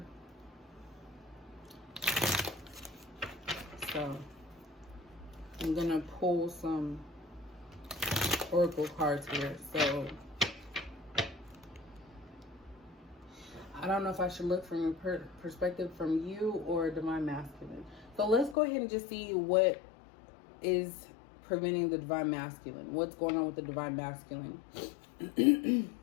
So I'm gonna pull some oracle cards here. So I don't know if I should look from your perspective from you or divine masculine. So let's go ahead and just see what is preventing the divine masculine. What's going on with the divine masculine?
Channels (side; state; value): right; drops out; at 18.6 s